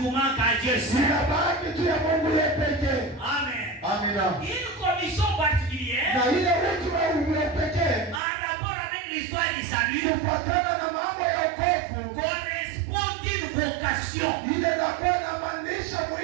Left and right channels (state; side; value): drops out; left; at 8.2 s